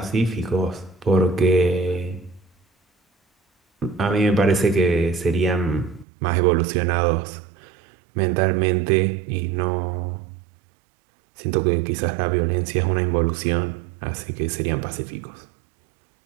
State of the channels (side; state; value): left; drops out; at 6.1 s